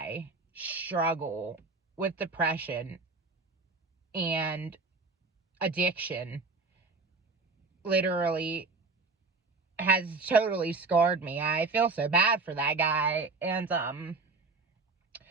struggle with depression and addiction literally has totally scarred me. I feel so bad for that guy. And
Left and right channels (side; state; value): left; quieter; 4.0 dB